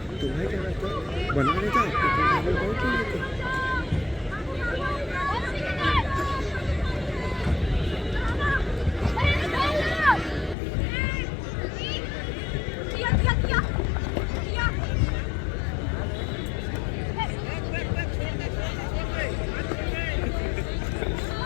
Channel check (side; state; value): right; drops out; at 10.6 s